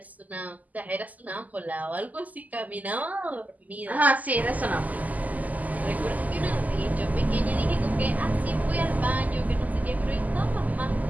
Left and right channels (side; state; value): left; late; 0.078 ms